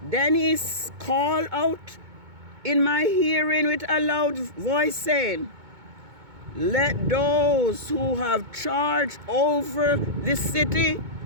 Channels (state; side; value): late; left; 2.2 ms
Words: he called out in my hearing with a loud voice, saying, let those who have charge over the city